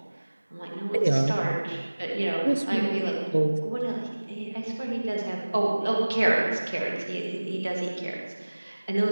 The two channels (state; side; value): inverted; both; correlation -1.00